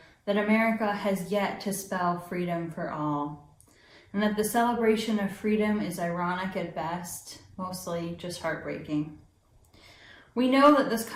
that America has yet to spell freedom for all, and that the celebration of freedom is ironic at best, mostly just heartbreaking. We know that this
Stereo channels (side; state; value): both; identical; correlation 1.00